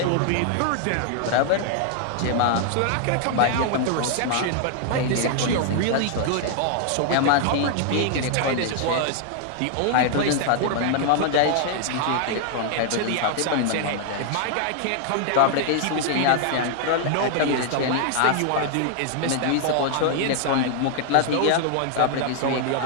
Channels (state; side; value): different; both; correlation 0.00